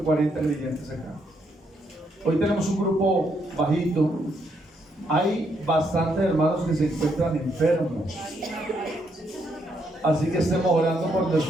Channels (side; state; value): both; normal; correlation 0.75